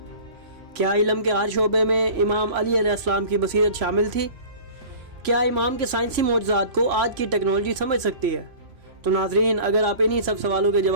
کیا علم کے ہر شعبے میں امام علی علیہ السلام کی بصیرت شامل تھی؟ کیا امام کے سائنسی معجزات کو آج کی ٹیکنالوجی سمجھ سکتی ہے؟ تو ناظرین، اگر آپ انہی سب سوالوں کے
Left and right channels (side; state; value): left; late; 3.0 ms